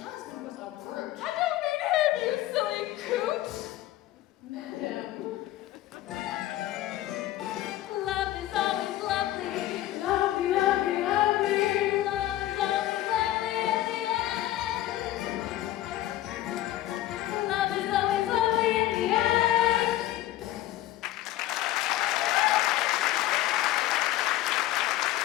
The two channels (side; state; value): right; quieter; 14.5 dB